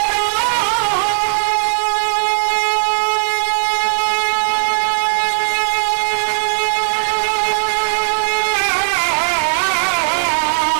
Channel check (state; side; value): silent; left; digital silence